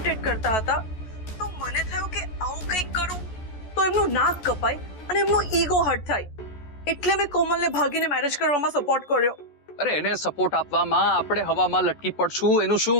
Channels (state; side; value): late; right; 14 ms